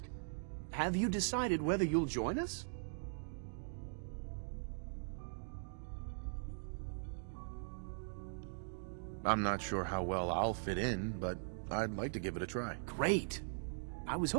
have you decided whether you'll join us? I'm not sure how well I'll fit in, but I'd like to give it a try. Great. I was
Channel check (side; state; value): left; silent; digital silence